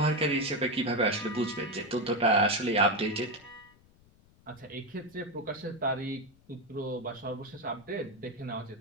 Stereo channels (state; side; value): noise; left; rumble, 29 dB below the sound